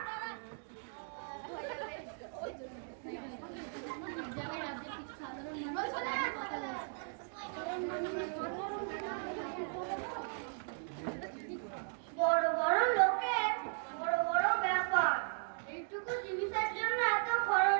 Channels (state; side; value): silent; left; 53 dB below the other